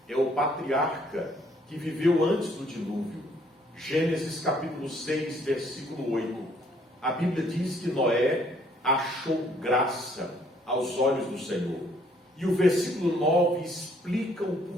é o patriarca que viveu antes do dilúvio. Gênesis capítulo 6, versículo 8. A Bíblia diz que Noé achou graça aos olhos do Senhor. E o versículo 9 explica o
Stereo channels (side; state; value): both; normal; correlation 0.64